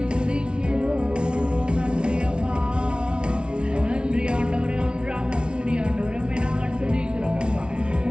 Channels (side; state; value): left; late; 0.056 ms